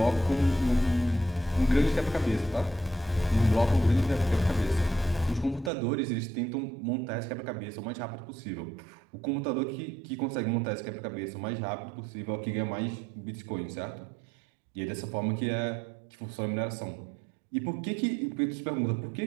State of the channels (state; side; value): drops out; left; at 5.7 s